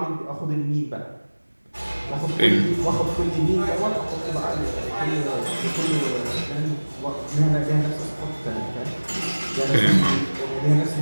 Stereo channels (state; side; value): inverted; both; correlation -1.00